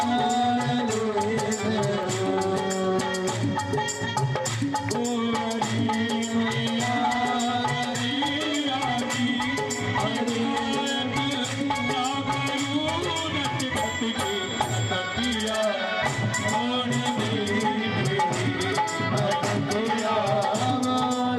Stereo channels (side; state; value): both; identical; correlation 1.00